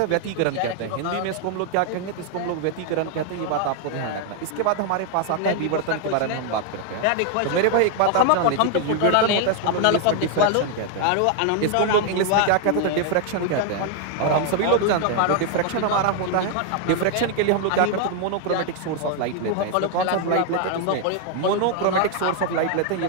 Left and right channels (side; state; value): both; different; correlation 0.00